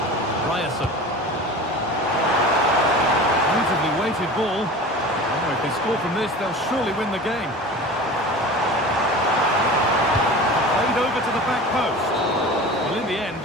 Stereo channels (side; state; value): both; normal; correlation 0.36